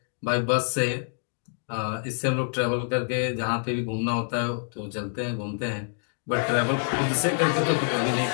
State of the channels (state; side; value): silent; right; digital silence